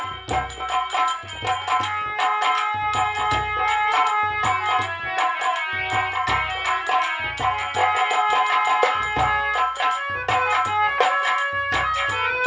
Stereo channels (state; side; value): identical; both; correlation 1.00